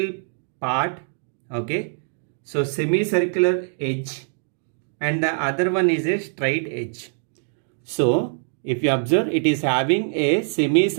part. Okay. So semicircular edge, and the other one is a straight edge. So if you observe, it is having a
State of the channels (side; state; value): left; silent; digital silence